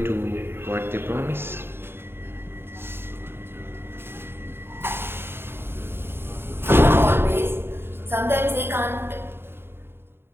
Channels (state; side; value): late; left; 0.11 ms